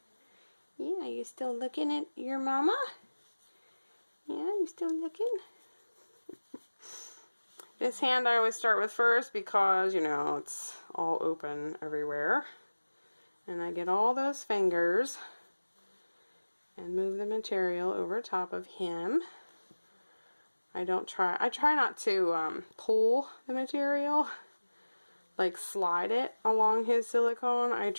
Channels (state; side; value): inverted; both; correlation -1.00